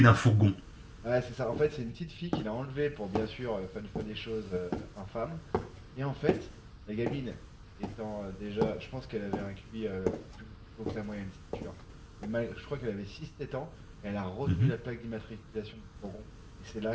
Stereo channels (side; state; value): both; identical; correlation 1.00